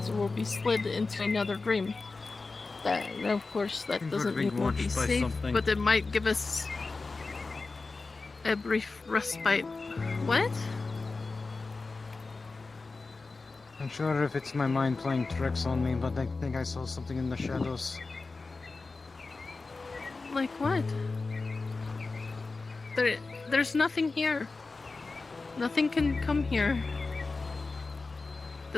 we'll be slid into another dream. Of course, that doesn't mean we'll be safe, but it might give us a brief respite. What? I'm sure if it's my mind playing tricks on me, but I think I saw something in the shadows. Like what? There's nothing here. Nothing can come here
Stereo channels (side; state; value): right; quieter; 3.8 dB